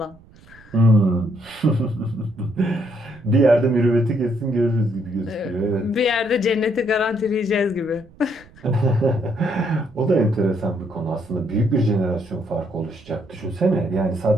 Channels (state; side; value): noise; right; rumble, 25 dB below the sound